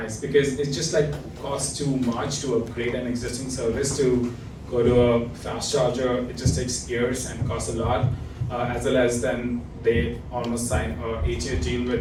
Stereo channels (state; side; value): identical; both; correlation 1.00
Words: because it just like costs too much to upgrade an existing service to go to a fast charger. It just takes years and costs a lot, as well as then they almost sign a 8-year deal